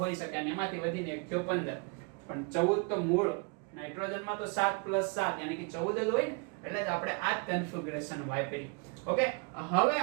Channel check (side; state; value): left; quieter; 34.4 dB